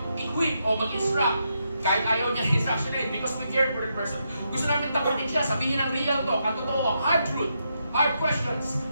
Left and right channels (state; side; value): inverted; both; correlation -0.82